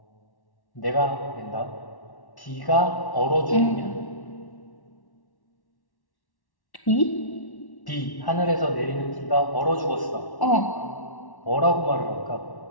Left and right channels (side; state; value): right; late; 1.1 ms